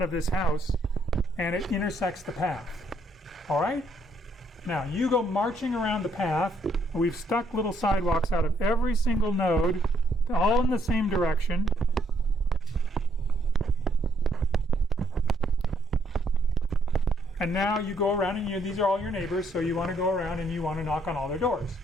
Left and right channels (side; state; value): both; normal; correlation 0.71